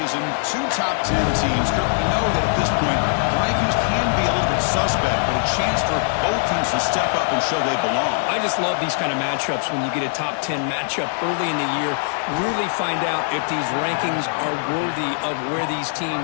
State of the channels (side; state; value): right; silent; 65 dB below the other